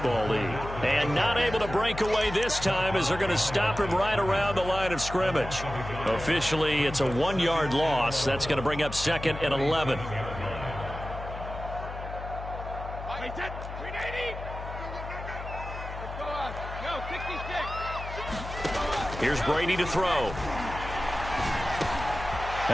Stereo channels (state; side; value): noise; left; hum, 9 dB below the sound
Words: League. And not able to break away this time as they're going to stop him right around the line of scrimmage. Officially, it's a 1-yard loss. That's going to bring up 2nd and 11. Here's Brady to throw.